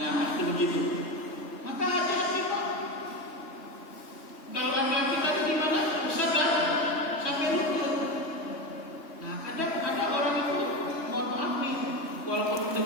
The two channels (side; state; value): right; late; 3.1 ms